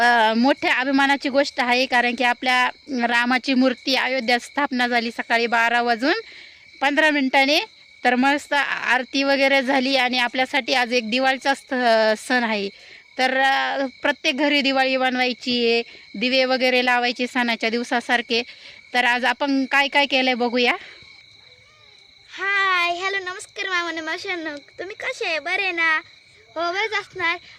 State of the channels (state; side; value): identical; both; correlation 1.00